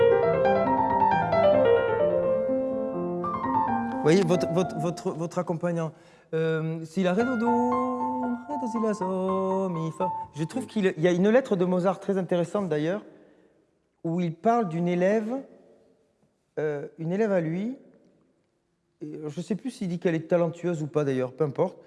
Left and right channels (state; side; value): identical; both; correlation 1.00